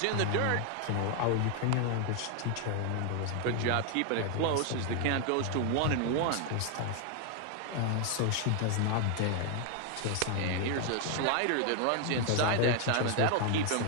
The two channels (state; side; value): different; both; correlation 0.00